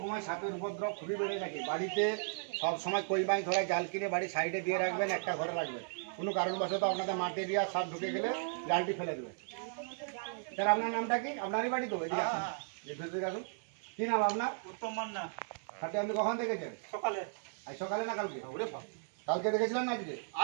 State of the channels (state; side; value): silent; left; digital silence